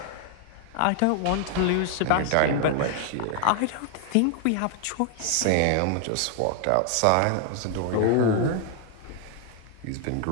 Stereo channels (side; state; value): both; different; correlation 0.00